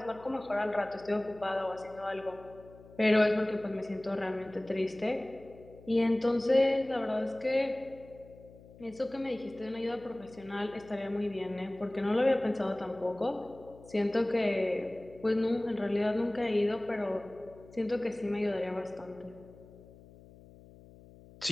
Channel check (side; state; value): left; noise; hum, 21 dB below the sound